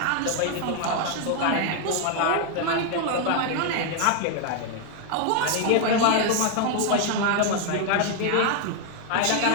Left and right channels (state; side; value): different; both; correlation 0.00